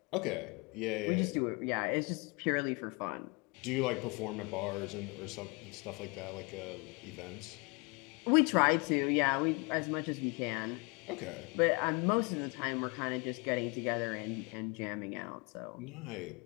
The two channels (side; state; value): right; quieter; 29.8 dB